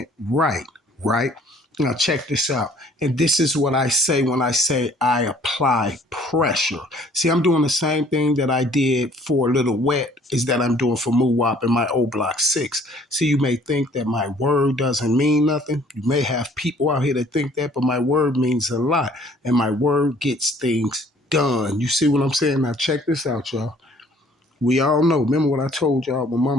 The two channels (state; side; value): normal; both; correlation 0.57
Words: right, right? Now check this out. And this is what I say when I say I apply pressure. See, I'm doing the same thing that I did for Little Wet is that I'm doing for Moowop in my Oblock 6. See, you may think that my word doesn't mean nothing. You may have people out here that think that, but my word means a lot. And my word gets things done. You see what I'm saying? Now check this out, y'all. We all know. Remember what I told y'all when